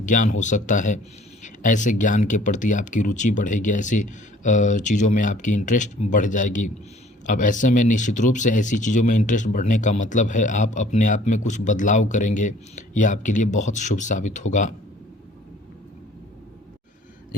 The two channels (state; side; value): normal; both; correlation 0.54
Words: ज्ञान हो सकता है। ऐसे ज्ञान के प्रति आपकी रुचि बढ़ेगी, ऐसी चीज़ों में आपकी इंटरेस्ट बढ़ जाएगी। अब ऐसे में निश्चित रूप से ऐसी चीज़ों में इंटरेस्ट बढ़ने का मतलब है आप अपने आप में कुछ बदलाव करेंगे, यह आपके लिए बहुत शुभ साबित होगा।